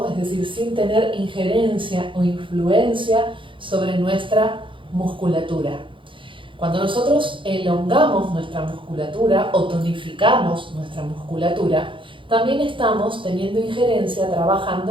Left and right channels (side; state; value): left; late; 0.25 ms